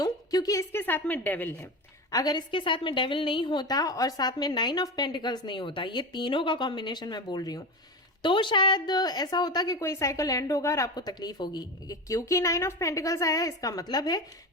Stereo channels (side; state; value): both; normal; correlation 0.23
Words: क्योंकि इसके साथ में डेविल है। अगर इसके साथ में डेविल नहीं होता और साथ में 9 ऑफ पेंटिकल्स नहीं होता, ये तीनों का कॉम्बिनेशन मैं बोल रही हूँ, तो शायद ऐसा होता कि कोई साइकिल एंड होगा और आपको तकलीफ होगी। क्योंकि 9 ऑफ पेंटिकल्स आया है, इसका मतलब है